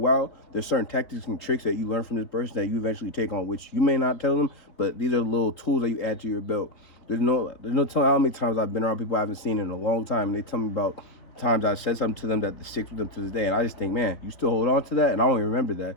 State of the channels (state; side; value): late; right; 4.0 ms